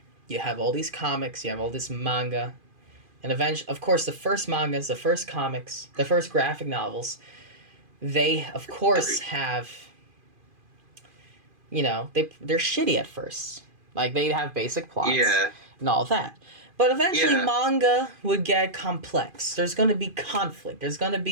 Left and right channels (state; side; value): late; left; 2.5 ms